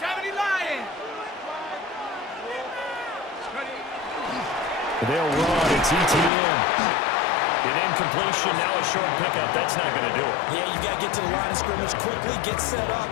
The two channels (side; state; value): right; drops out; at 6.3 s